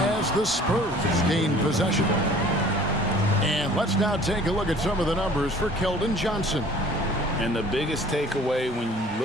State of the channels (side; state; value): both; normal; correlation 0.50